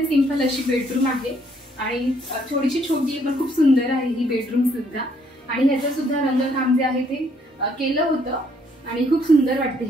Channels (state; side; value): normal; both; correlation 0.67